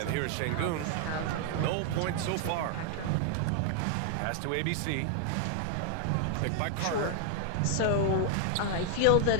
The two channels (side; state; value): both; different; correlation 0.00